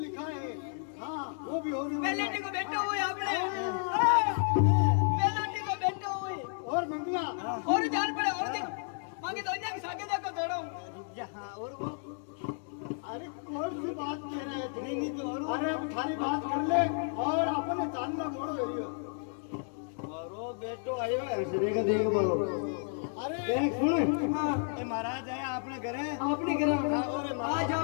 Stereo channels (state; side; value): silent; right; 55 dB below the other